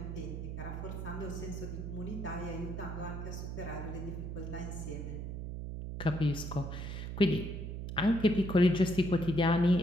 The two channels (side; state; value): right; noise; hum, 6 dB below the sound